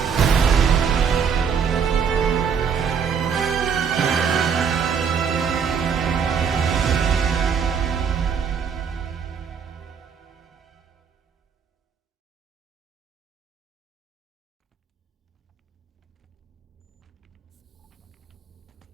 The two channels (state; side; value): quieter; left; 6.8 dB